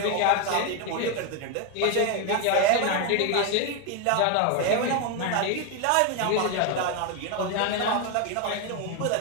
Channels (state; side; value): different; both; correlation 0.01